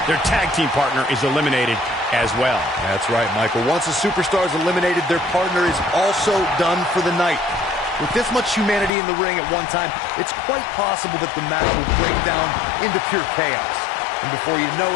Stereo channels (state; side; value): drops out; right; at 8.9 s